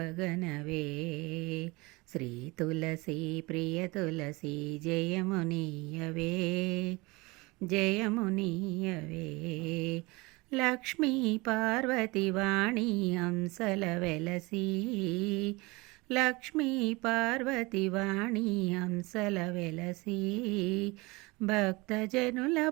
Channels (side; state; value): left; quieter; 24.2 dB